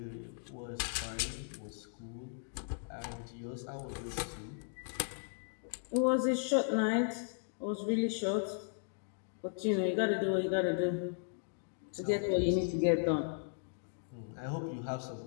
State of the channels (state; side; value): silent; right; digital silence